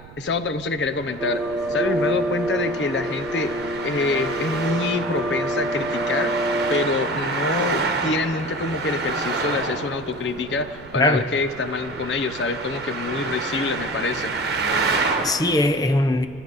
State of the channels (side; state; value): right; noise; rumble, 19 dB below the sound